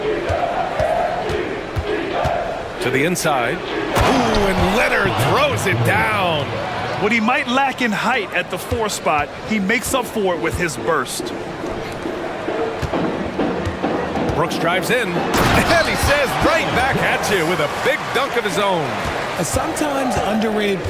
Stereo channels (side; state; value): both; identical; correlation 1.00